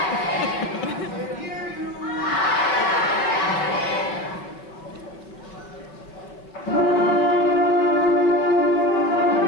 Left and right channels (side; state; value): right; late; 5.2 ms